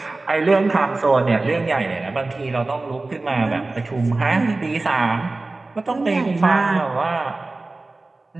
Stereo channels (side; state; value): left; quieter; 3.2 dB